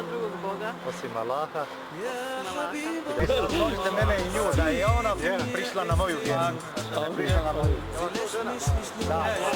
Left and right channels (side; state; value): both; identical; correlation 1.00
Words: drugog Boga osim Allaha. osim Allaha. Složite mene i nju, da je ona prišla na moju vjeru. Prišla na moju. Da,